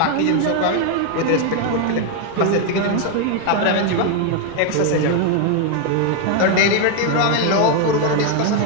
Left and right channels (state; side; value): different; both; correlation 0.01